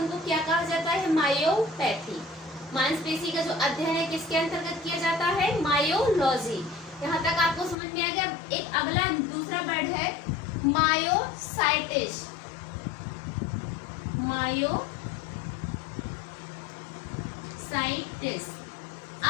क्या कहा जाता है, मायोपैथी। मांसपेशी का जो अध्ययन है किसके अंतर्गत किया जाता है, मायोलॉजी। यहाँ तक आपको समझ में आ गया। एक अगला दूसरा वर्ड है मायोसाइटिस। मायोसाइटिस।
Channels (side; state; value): right; drops out; at 7.8 s